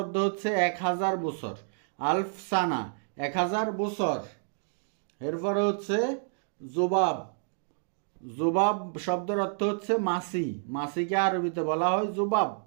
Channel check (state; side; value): silent; left; digital silence